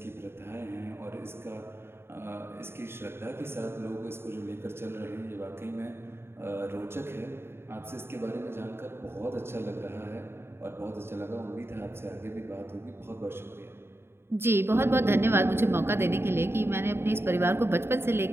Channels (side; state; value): left; late; 0.12 ms